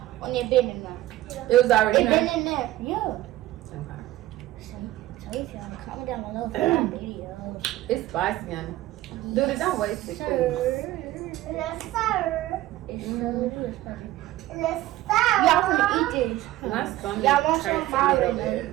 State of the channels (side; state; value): left; quieter; 15.5 dB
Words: when it been in there? It was already in It there. been in there, yeah. Okay. So if y'all comment down below for my videos. It's spicy, honey. Dude, don't waste it. Sir. Yes, sir. It's so good, spicy. Yes, sir. Y'all finna eat this. My stomach Y'all want some hurts of a little